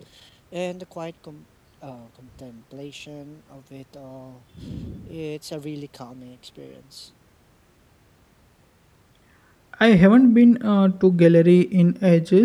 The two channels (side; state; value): both; identical; correlation 1.00